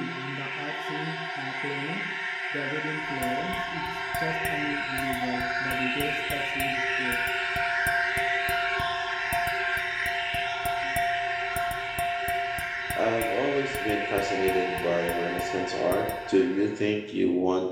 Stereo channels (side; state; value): both; identical; correlation 1.00